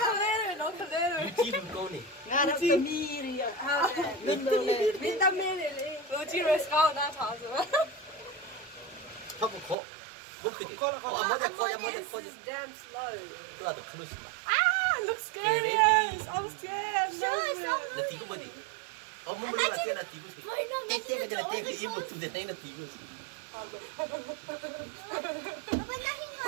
Nó thật đấy. Lưu chi con này. Nga nó tầm mi đi à? Lên lên. Mình tầm mi đi. Lưu chi rồi sao nó tháo rồi? Không có khó. Look at it. This is damn slow. Itu ada cruise. Looks scary. I'm scared. Nanti aku beri. Oh, mau beri latihan nanti aku sih. Nanti aja latihan ke ibu tu dan nanti aku sih.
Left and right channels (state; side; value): drops out; left; at 9.8 s